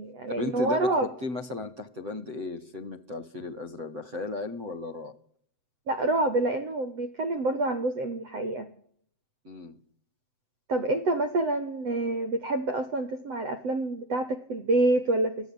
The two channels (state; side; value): late; left; 7.9 ms